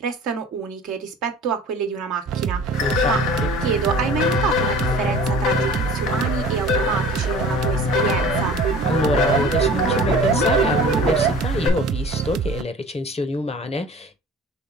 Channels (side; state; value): both; normal; correlation 0.44